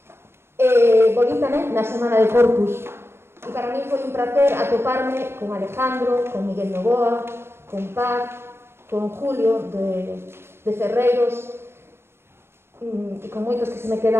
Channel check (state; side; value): late; left; 0.12 ms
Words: volví tamén na semana de Corpus, e para mí foi un placer atoparme con Alejandro, con Miguel Novoa, con Paz, con Julio de Ferreiros e con moitos que se me